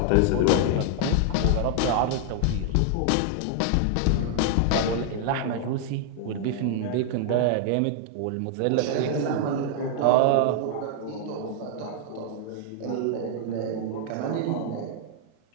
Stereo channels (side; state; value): both; different; correlation -0.01